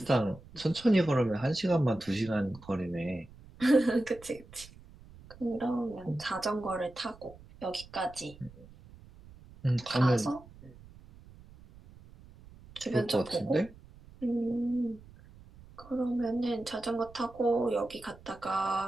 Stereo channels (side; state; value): right; noise; rumble, 21 dB below the sound